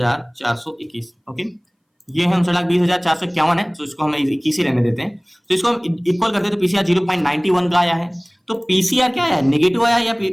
ओके। ये है 59,20,451 है, तो इसको हम 21 ही रहने देते हैं। तो इसको हम इक्वल करते हैं, तो पीसीआर 0.91 का आया है। तो पीसीआर क्या है, नेगेटिव आया या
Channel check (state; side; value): identical; both; correlation 1.00